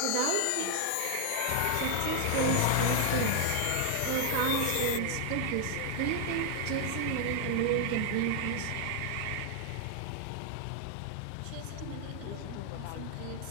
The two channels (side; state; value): both; different; correlation 0.00